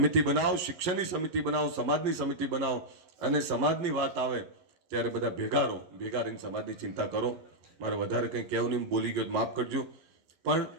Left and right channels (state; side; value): late; left; 12 ms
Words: બનાવો, શિક્ષણની સમિતિ બનાવો, સમાજની સમિતિ બનાવો, અને સમાજની વાત આવે ત્યારે બધા ભેગા રહો. ભેગા રહીને સમાજની ચિંતા કરો. મારે વધારે કંઈ કહેવું નહીં, બોલી ગયો માફ કરજો. પણ